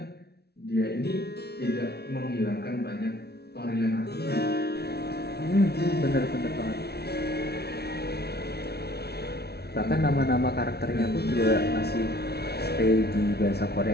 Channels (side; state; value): right; late; 0.47 ms